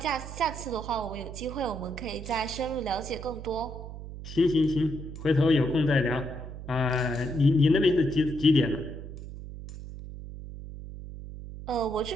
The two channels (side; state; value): right; noise; hum, 11 dB below the sound